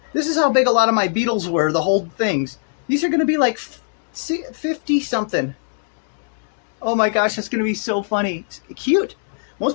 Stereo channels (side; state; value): right; silent; digital silence